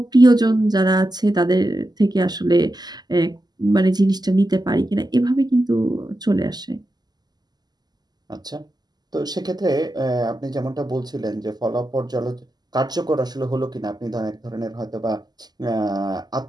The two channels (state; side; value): late; left; 0.20 ms